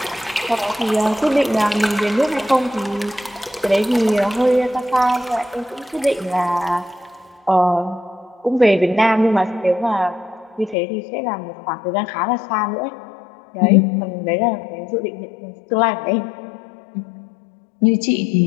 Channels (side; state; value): right; drops out; at 10.8 s